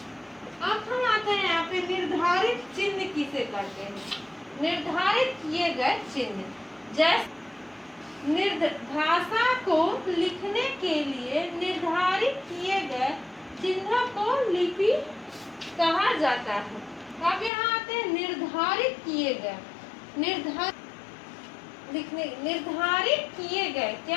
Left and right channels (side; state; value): right; drops out; at 17.5 s